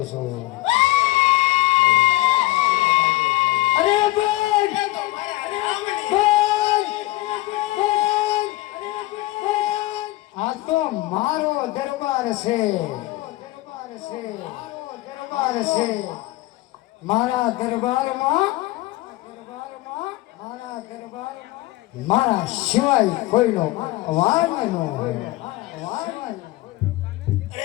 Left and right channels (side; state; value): right; quieter; 18.3 dB